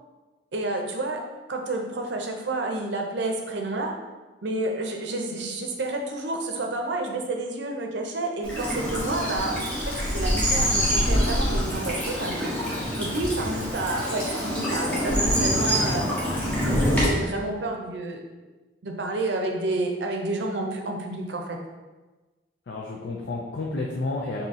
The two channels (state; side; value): normal; both; correlation 0.34